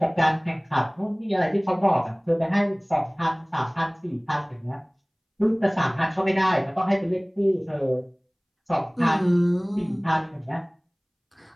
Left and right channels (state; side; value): identical; both; correlation 1.00